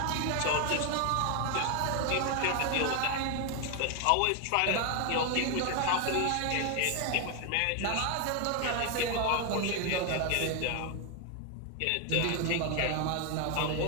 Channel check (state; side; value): different; both; correlation 0.01